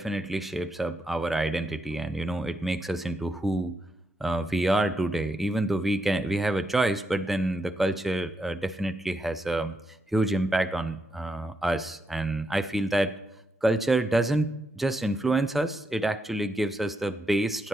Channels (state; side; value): normal; both; correlation 0.82